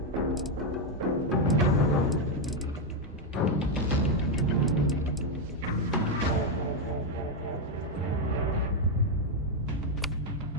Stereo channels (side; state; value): both; normal; correlation 0.03